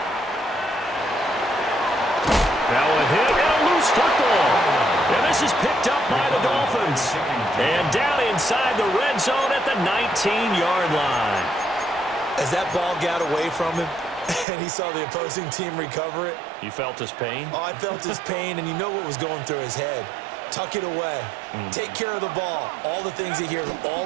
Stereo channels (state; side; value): drops out; left; at 14.5 s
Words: Now a hit and a loose football. And this is picked up by the Dolphins. And down inside the red zone at the 19-yard line. As that ball got away from him and he saw the opposing team recover it. You felt his pain? Oh, I felt his pain, and you know what was going through his head. Tuck it away. Take care of the ball. All the things you hear all